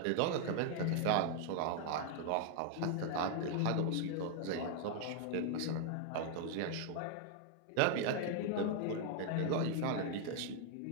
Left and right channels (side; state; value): both; different; correlation 0.00